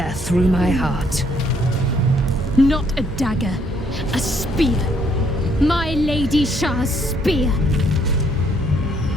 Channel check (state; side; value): normal; both; correlation 0.68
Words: through my heart. Not a dagger, a spear. My Lady Shah's spear.